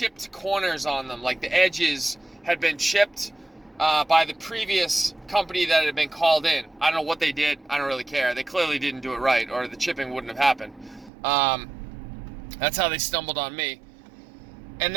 corners on them, like the edges had been chipped by the previous company that had been called in. I don't know what they did. I don't really care. They clearly didn't do it right, or the chipping wouldn't have happened. That's how they stumbled on me. And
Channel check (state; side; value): drops out; left; at 11.1 s